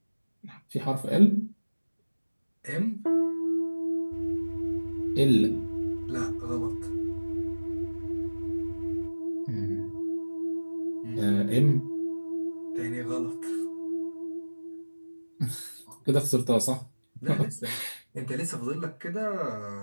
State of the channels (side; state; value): both; inverted; correlation -1.00